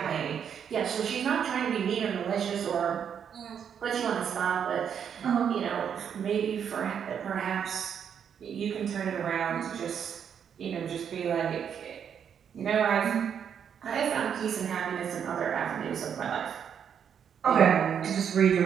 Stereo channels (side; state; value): left; quieter; 8.0 dB